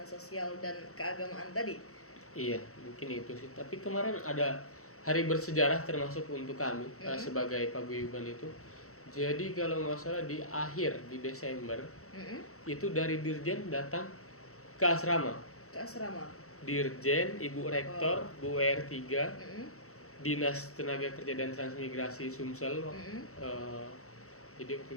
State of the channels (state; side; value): late; right; 0.64 ms